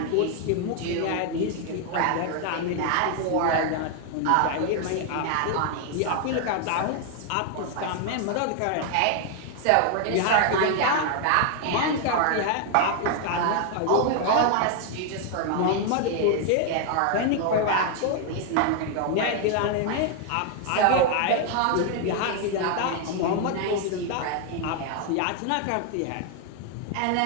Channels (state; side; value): different; both; correlation 0.00